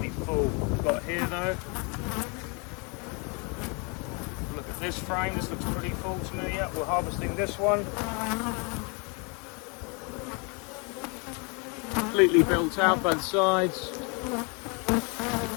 full. We've got here though. Look at this frame, this looks pretty full to me. Yeah, we're harvesting this one. Completely built out both sides.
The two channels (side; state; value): right; quieter; 33.4 dB